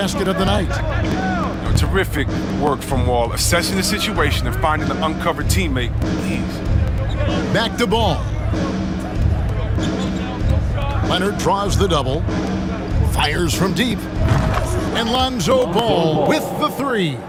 of the night. Terrific work from Wall, assessing the situation and finding an uncovered teammate. Back to Ball. Leonard draws the double. Fires from deep. And Lonzo Ball with the 3.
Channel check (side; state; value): both; identical; correlation 1.00